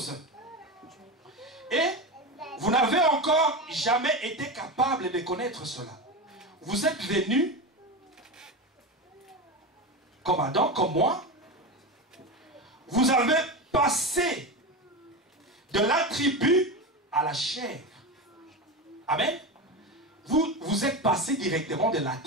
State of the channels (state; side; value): normal; both; correlation 0.21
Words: Et vous n'avez encore jamais été capable de connaître cela. Vous êtes venus, comme Adam, comme moi. Vous avez passé de l'attribut à la chair. Amen. Vous êtes passé directement de